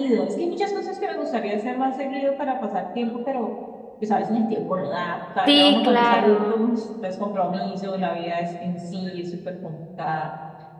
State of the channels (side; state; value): both; identical; correlation 1.00